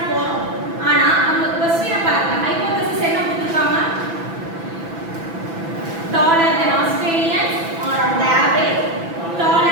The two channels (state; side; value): late; left; 6.0 ms